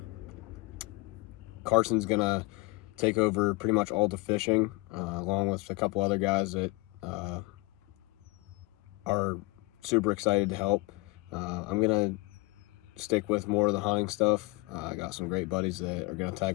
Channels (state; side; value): quieter; right; 23.9 dB